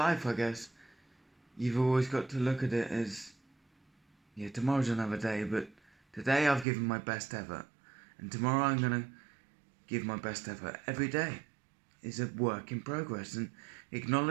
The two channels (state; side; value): drops out; left; at 6.7 s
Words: I guess. You've always got to look at it as, yeah, tomorrow's another day, but today I've given my best ever, and tomorrow I'm gonna give my best ever. Every day is a work in progress, and